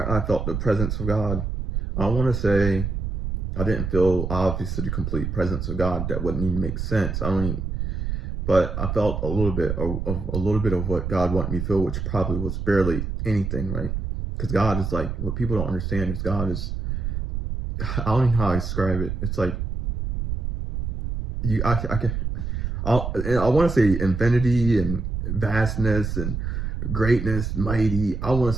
I felt the presence of God. I want to say I didn't feel obviously the complete presence of God. That wouldn't even make sense. I don't even, but I felt a little bit of what God wanted me to feel, which probably was barely anything, right? Because God is like, what people don't understand is God is, I don't know how I describe it. It's like I can I want to say infinity and vastness and greatness, mighty. I want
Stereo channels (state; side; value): noise; right; rumble, 3 dB below the sound